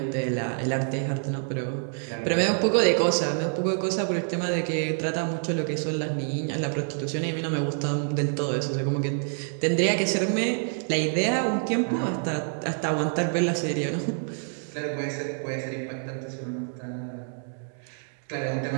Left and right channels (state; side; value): silent; left; 60 dB below the other